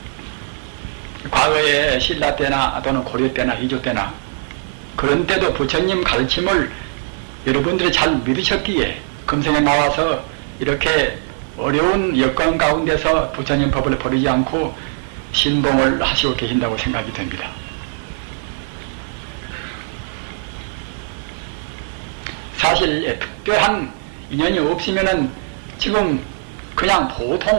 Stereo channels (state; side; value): silent; left; digital silence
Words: 과거에 신라 때나 또는 고려 때나 이조 때나 그런 때도 부처님 가르침을 여러분들이 잘 믿으셨기에 금생에 나와서 이렇게 어려운 여건 가운데서 부처님 법을 버리지 않고 신봉을 하시고 계신다고 생각이 됩니다. 사실 특별한 인연이 없으면은 지금 그냥